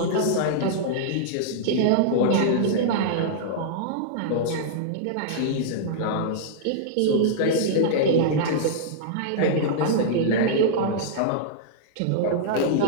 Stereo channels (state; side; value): different; both; correlation -0.02